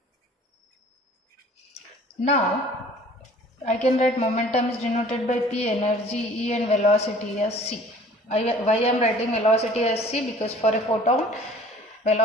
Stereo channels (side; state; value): both; normal; correlation 0.50